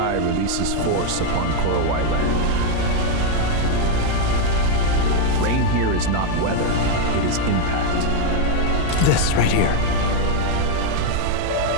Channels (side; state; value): both; different; correlation 0.00